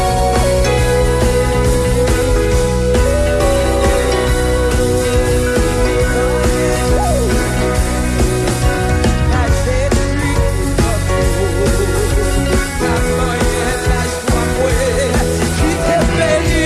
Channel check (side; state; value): both; identical; correlation 1.00